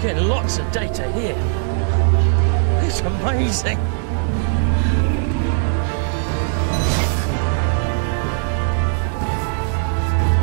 Getting lots of data here. It's amazing.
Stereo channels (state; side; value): silent; left; 66 dB below the other